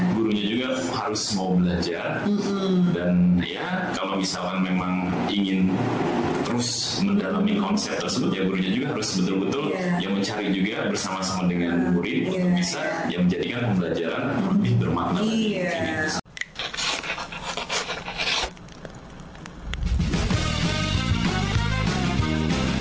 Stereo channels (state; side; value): identical; both; correlation 1.00